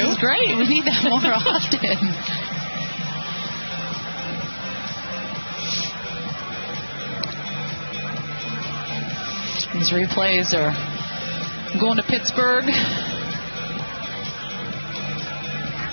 is great. We need that more often. These replays are going to Pittsburgh.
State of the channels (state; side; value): inverted; both; correlation -1.00